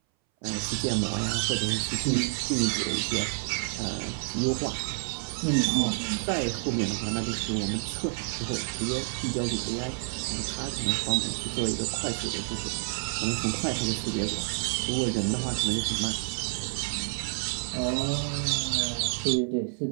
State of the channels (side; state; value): left; silent; 59 dB below the other